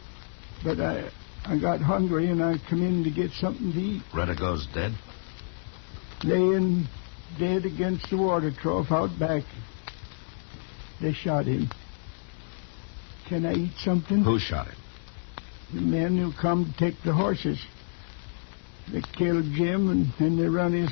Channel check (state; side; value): silent; right; 56 dB below the other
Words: but I got hungry and I come in to get something to eat. Redigo's dead? Laying dead against the water trough out back. They shot him. Can I eat something? Who shot him? The men who come to take the horses. They killed Jim and then they run his